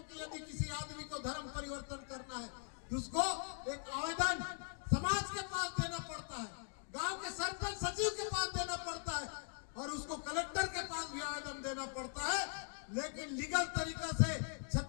यदि किसी आदमी को धर्म परिवर्तन करना है तो उसको एक आवेदन समाज के पास देना पड़ता है, गांव के सरपंच सचिव के पास देना पड़ता है, और उसको कलेक्टर के पास भी आवेदन देना पड़ता है। लेकिन लीगल तरीका से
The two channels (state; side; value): silent; right; 50 dB below the other